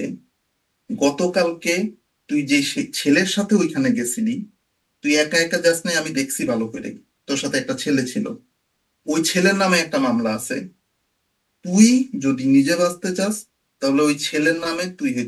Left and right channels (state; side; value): identical; both; correlation 1.00